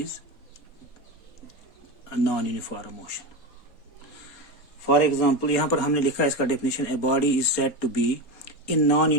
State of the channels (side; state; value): right; late; 3.7 ms